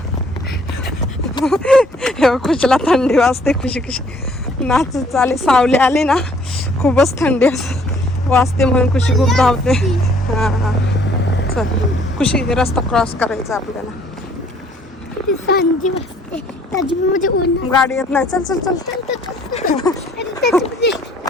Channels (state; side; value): normal; both; correlation 0.60